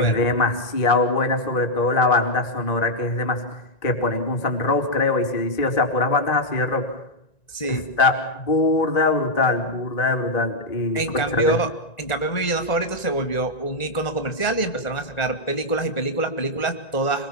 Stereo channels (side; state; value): right; late; 1.9 ms